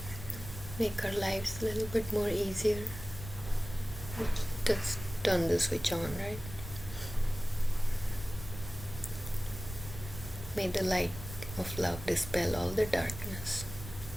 make our lives a little bit more easier. Just turn the switch on, right? May the light of love dispel all the darkness.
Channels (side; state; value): both; normal; correlation 0.97